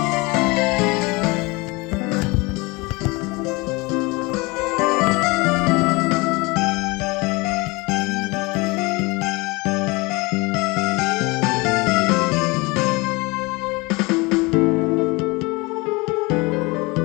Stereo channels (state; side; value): quieter; right; 25.2 dB